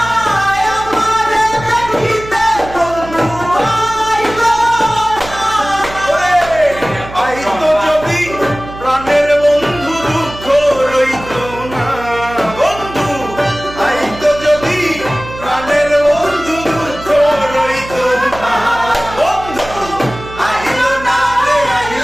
আমারে দেখিতে বন্ধু, আইলো না। আইতো যদি প্রাণের বন্ধু দুঃখ রইতো না বন্ধু, আইতো যদি প্রাণের বন্ধু দুঃখ রইতো না বন্ধু, আইলো না রে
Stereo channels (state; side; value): noise; right; hum, 14 dB below the sound